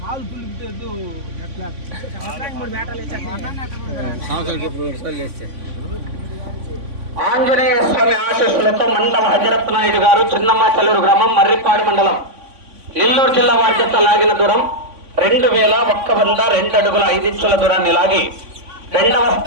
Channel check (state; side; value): late; left; 3.5 ms